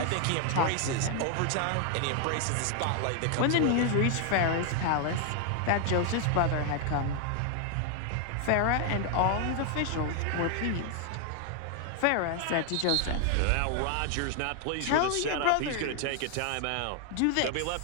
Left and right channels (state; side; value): different; both; correlation 0.00